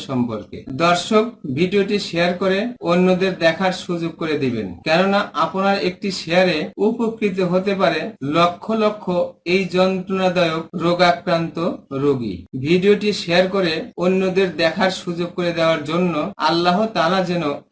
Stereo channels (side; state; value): both; identical; correlation 1.00